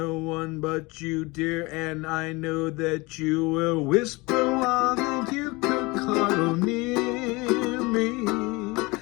one but you, dear, and I know that you will whisper while that you could cuddle near me.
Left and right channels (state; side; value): quieter; right; 24.3 dB